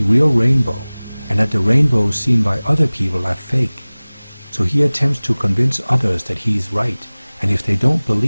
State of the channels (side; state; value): both; inverted; correlation -1.00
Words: real rainbow and that the rainbows seen by other people are fake. So he attempts to convince others that he is right, and if they don't